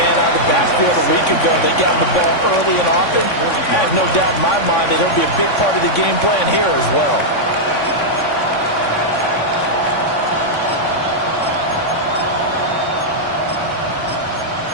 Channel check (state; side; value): late; right; 3.5 ms